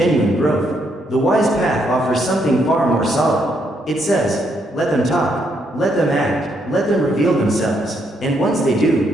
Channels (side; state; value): both; normal; correlation 0.75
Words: growth. The wise path offers something far more solid. It says, let them talk, let them act, let them reveal themselves, and once they